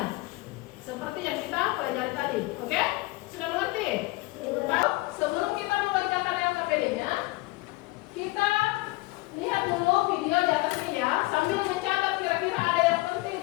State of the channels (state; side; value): quieter; right; 21.3 dB